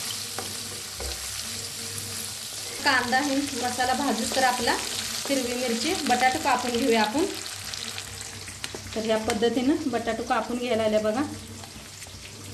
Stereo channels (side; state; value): both; identical; correlation 1.00